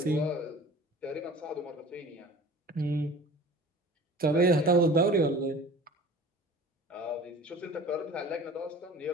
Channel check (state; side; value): normal; both; correlation 0.43